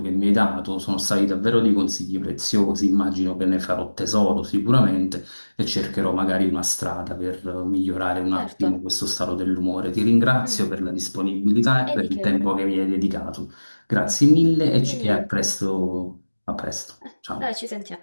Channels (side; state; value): both; inverted; correlation -1.00